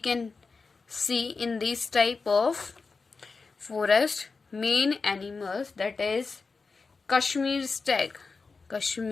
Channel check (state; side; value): quieter; right; 4.4 dB